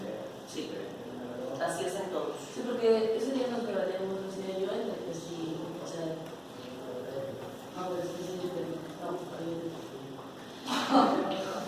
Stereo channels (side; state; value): both; identical; correlation 1.00